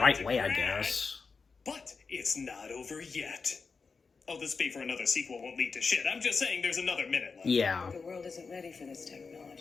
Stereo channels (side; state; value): right; quieter; 4.9 dB